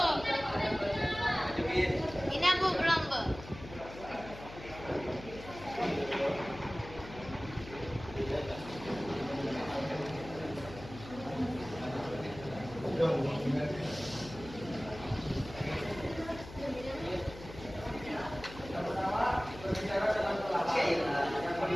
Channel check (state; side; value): noise; left; hum, 15 dB below the sound